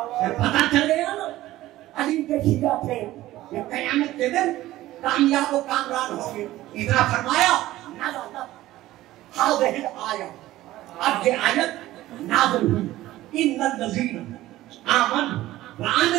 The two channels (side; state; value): left; quieter; 15.8 dB